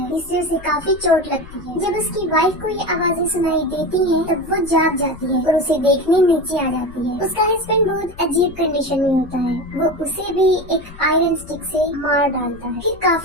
जिससे उसे काफी चोट लगती है। जब उसकी वाइफ को ये आवाजें सुनाई देती हैं, तब वो जाग जाती है और उसे देखने नीचे आ जाती है। उसका हस्बैंड बहुत अजीब कंडीशन में होता है। वो उसे भी एक आयरन स्टिक से मार डालता है। फिर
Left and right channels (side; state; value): left; noise; rumble, 18 dB below the sound